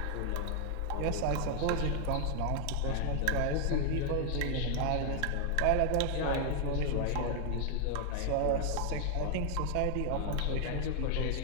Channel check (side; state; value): both; different; correlation 0.00